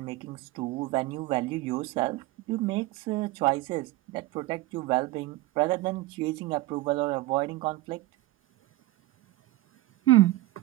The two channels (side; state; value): left; quieter; 17.5 dB